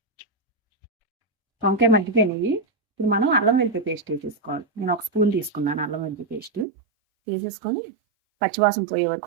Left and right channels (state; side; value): drops out; left; at 6.7 s